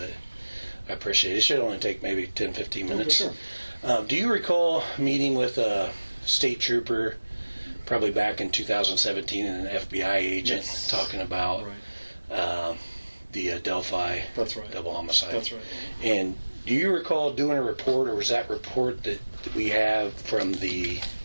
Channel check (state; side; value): inverted; both; correlation -1.00